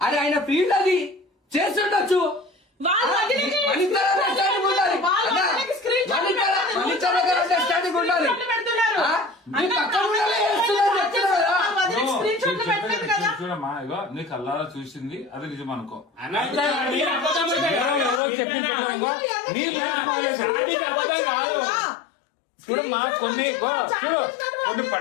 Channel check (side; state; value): right; drops out; at 18.2 s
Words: అరే ఆయన ఫీల్డ్ అది చేస్తుండొచ్చు. వాళ్ళ వదినకి మనిద్దరం understanding ఉండాలి. వాళ్ళ అన్నా, వదినకి screen shot పెడతారు. మనిద్దరం understanding ఉండాలి. screen shot పెడుతున్నారు. ఆ? నీ పక్కన ఉండాలి, చేస్తున్నారు, చెప్తున్నారు కదా? వాళ్ళ వదినకి screen shot పెట్టలేదు కదా. చూడమ్మా ఇగో నీ కల్లారా చూసింది అది నిజం అనుకో. అన్న నేను అబద్ధం అంటే ఎవరో చెప్పింది అయ్యో, ఎందుకు నీ ఇలా చాటింగ్ అబద్ధం కాదు. చూడమ్మా కొన్ని చూడు కొన్ని